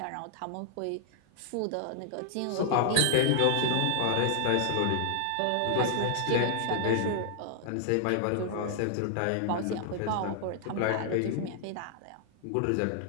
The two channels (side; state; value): both; different; correlation -0.01